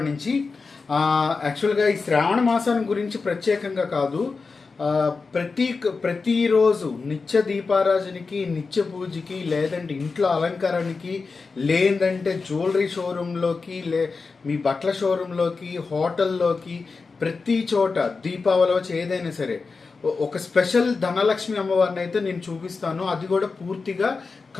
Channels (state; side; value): quieter; right; 4.4 dB